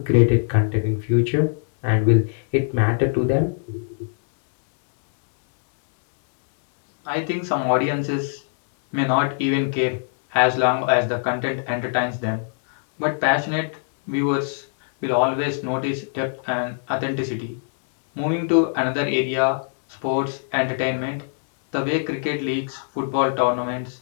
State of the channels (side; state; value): right; silent; digital silence